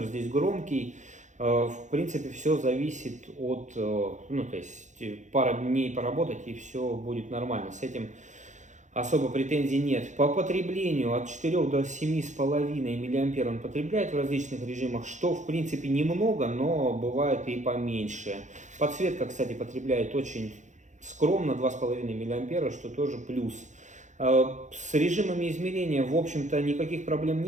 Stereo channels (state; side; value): late; left; 0.35 ms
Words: здесь громкий, в принципе, все зависит от, то есть пара дней поработать и все будет нормально. С этим особо претензий нет. По потреблению от 4 до 7,5 мА он потребляет в различных режимах, что в принципе немного, но бывает и поменьше. Подсветка, кстати, потребляет очень скромно, 2,5 мА, что тоже плюс. С режимами измерения, в общем-то, никаких проблем